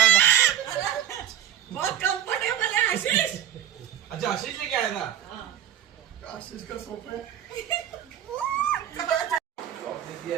है? बहुत कंफर्टेबल है आशीष। अच्छा आशीष लेके आया था। आशीष का सोफा है। दिया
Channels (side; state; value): left; quieter; 10.5 dB